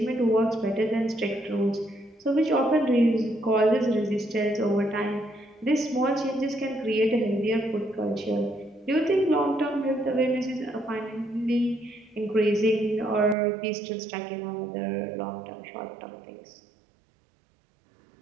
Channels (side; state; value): left; drops out; at 13.4 s